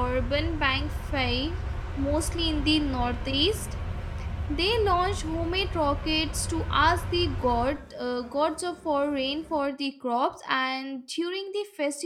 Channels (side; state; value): both; identical; correlation 1.00